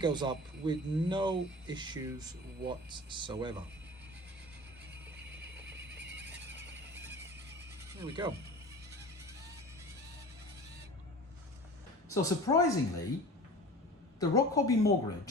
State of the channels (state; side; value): normal; both; correlation 0.38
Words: up with no issues whatsoever. There we go. So surprisingly, the Rochobby